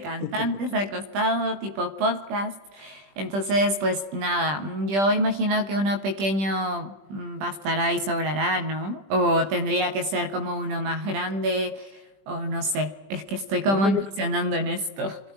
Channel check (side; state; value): left; late; 20 ms